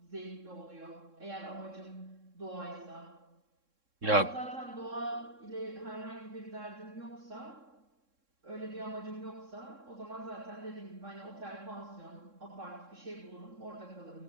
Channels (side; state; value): left; late; 3.7 ms